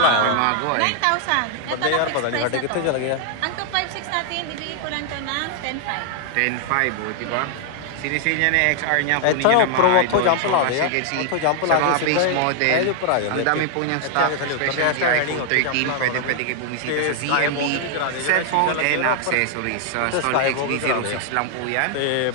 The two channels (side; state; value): both; different; correlation 0.00